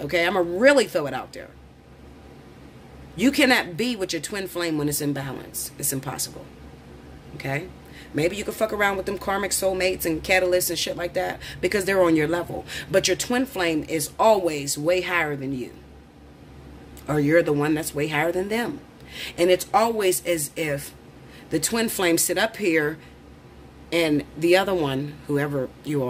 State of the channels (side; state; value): both; identical; correlation 1.00